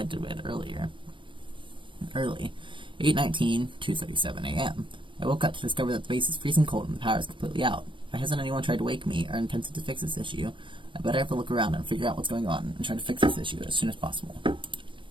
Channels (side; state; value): left; late; 0.24 ms